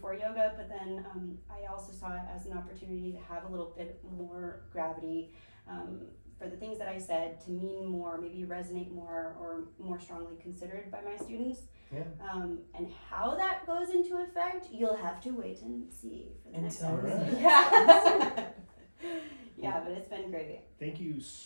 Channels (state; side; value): inverted; both; correlation -1.00